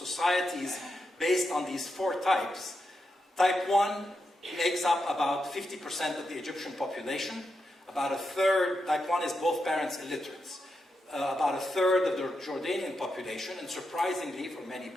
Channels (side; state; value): both; normal; correlation 0.86